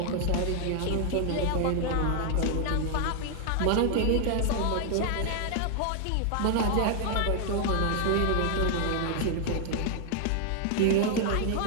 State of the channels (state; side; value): different; both; correlation 0.00